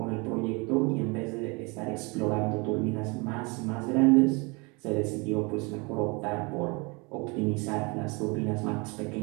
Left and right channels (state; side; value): quieter; left; 28.8 dB